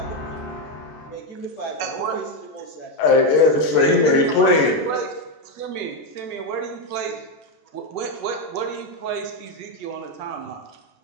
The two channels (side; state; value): right; late; 14 ms